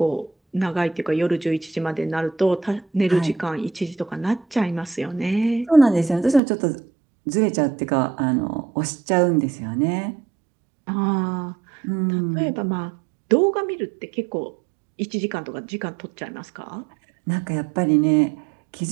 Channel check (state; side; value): drops out; left; at 6.4 s